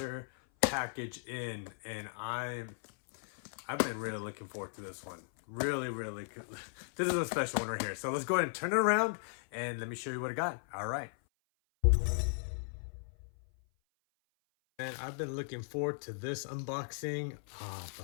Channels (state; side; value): silent; right; 53 dB below the other